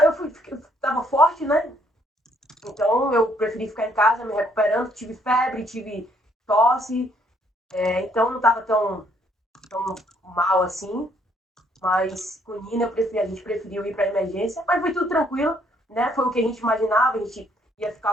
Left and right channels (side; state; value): both; normal; correlation 0.67